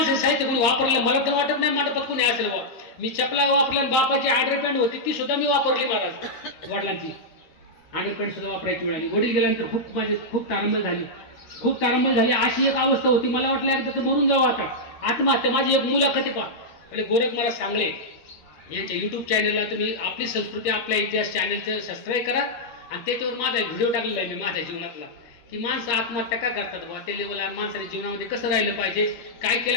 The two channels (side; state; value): right; late; 13 ms